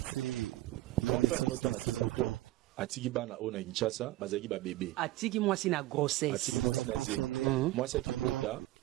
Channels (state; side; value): quieter; left; 17.1 dB